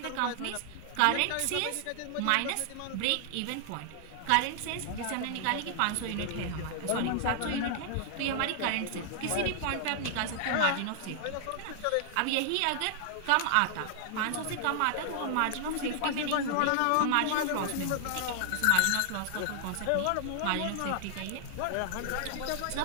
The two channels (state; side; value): different; both; correlation 0.00